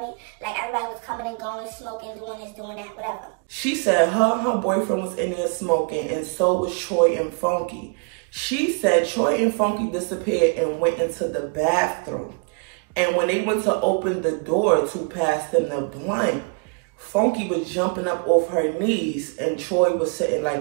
Like, everybody was coming and going, smoking, doing this, doing that, whatever. She said her boyfriend was in there smoking, and so was Troy and Funky. She said Troy and Funky disappeared and went into the bathroom. And when they went to open the door to pass them the blunt, Funky was jumping up off her knees and Troy was sitting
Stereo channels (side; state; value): left; quieter; 35.9 dB